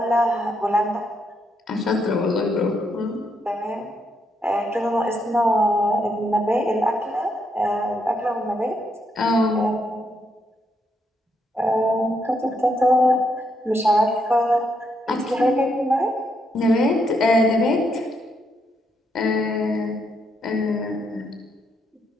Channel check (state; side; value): normal; both; correlation 0.78